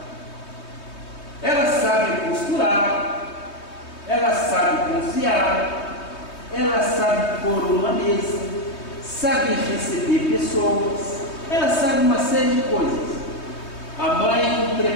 Ela sabe costurar, ela sabe cozinhar, ela sabe pôr uma mesa, sabe receber pessoas, ela sabe uma série de coisas. A mãe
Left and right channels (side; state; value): right; late; 3.2 ms